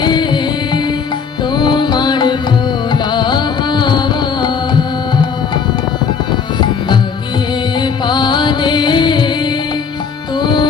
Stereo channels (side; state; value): right; quieter; 6.1 dB